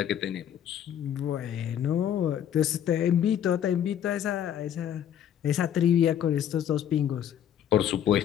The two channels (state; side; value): quieter; right; 9.8 dB